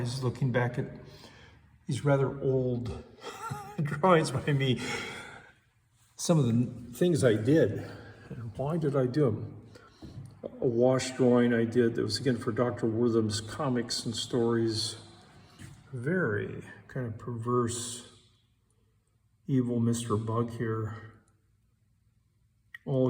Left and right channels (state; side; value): identical; both; correlation 1.00